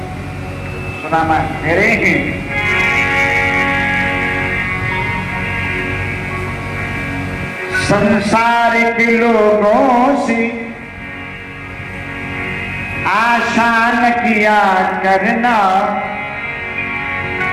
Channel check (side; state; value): both; identical; correlation 1.00